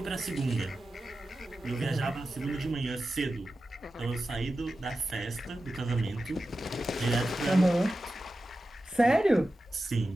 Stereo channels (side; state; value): both; normal; correlation 0.93